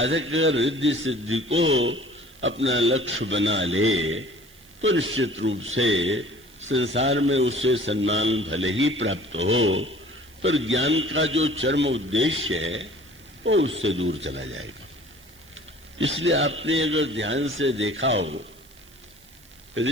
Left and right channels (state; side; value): noise; right; hiss, 26 dB below the sound